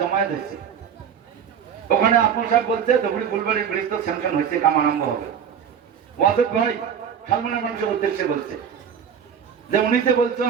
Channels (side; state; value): left; quieter; 7.8 dB